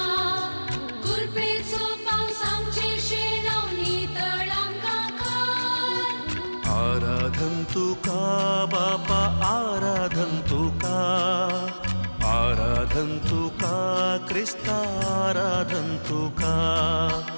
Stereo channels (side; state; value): both; inverted; correlation -1.00